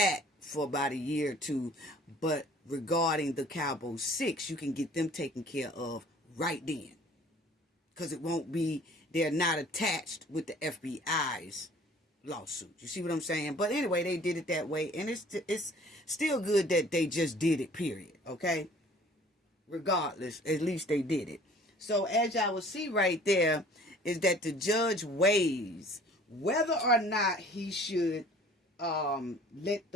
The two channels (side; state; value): both; normal; correlation 0.51